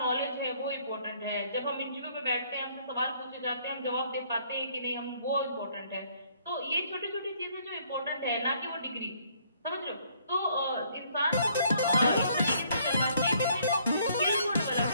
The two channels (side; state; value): both; inverted; correlation -0.65